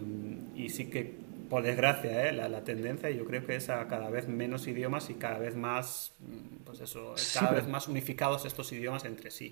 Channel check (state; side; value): silent; left; 52 dB below the other